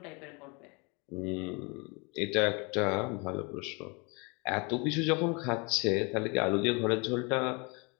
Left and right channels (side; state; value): right; quieter; 30.3 dB